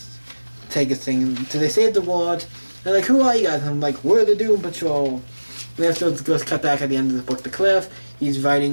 take his thing. So they save the world. They're like, who are you guys? And I'm like, we're the Doom Patrol. And then it goes cut back at the end of the book to Cliff. he's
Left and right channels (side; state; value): both; inverted; correlation -1.00